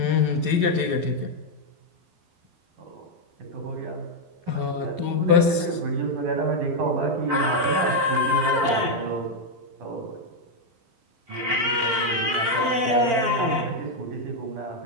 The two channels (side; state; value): left; late; 12 ms